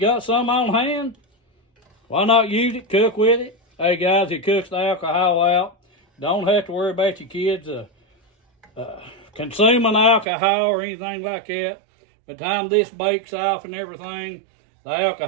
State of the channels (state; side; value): drops out; left; at 10.2 s